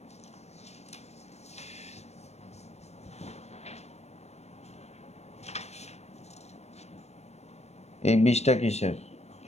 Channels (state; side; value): late; right; 0.31 ms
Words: এই 20টা কিসের?